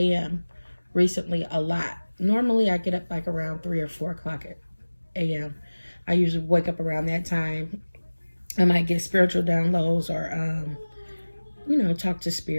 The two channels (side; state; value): both; inverted; correlation -1.00